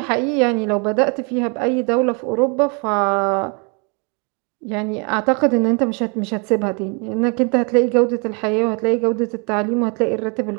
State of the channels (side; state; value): left; quieter; 34.8 dB